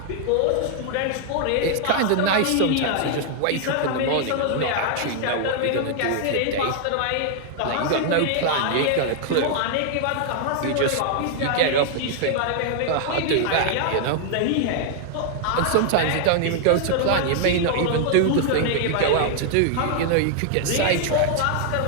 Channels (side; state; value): both; different; correlation 0.00